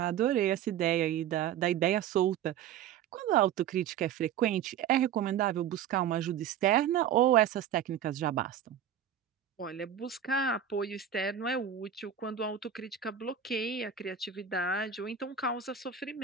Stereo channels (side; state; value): left; quieter; 9.1 dB